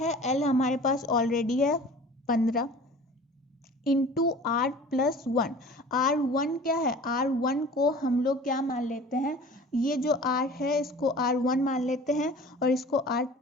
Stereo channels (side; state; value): both; normal; correlation 0.43